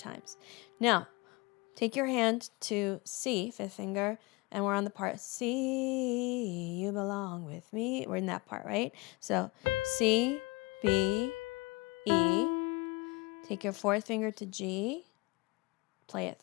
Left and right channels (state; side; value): quieter; right; 25.0 dB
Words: Now, take your hand to C, 5th finger, and we're on the part C, you belong with me. We're in that part, right? So C, B, E. Take your 4th finger to G. Play it